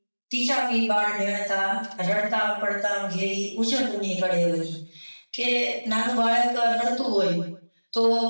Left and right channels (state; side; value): inverted; both; correlation -1.00